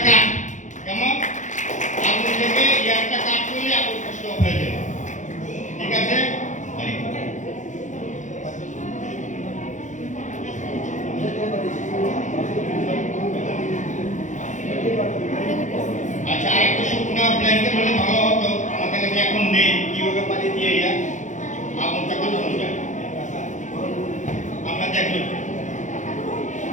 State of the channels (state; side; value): late; right; 0.36 ms